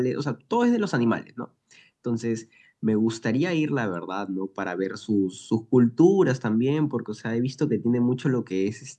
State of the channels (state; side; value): identical; both; correlation 1.00